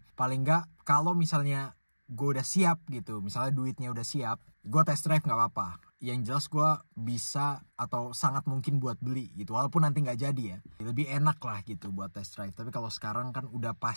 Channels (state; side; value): inverted; both; correlation -1.00